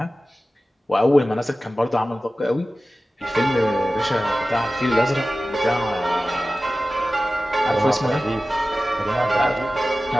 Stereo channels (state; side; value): normal; both; correlation 0.96